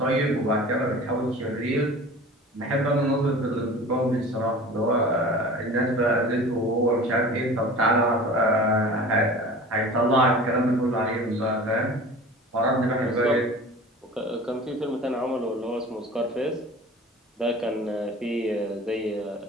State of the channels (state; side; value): normal; both; correlation 0.39